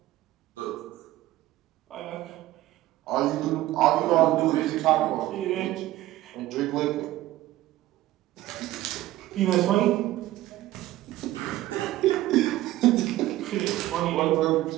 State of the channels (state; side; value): quieter; left; 15.6 dB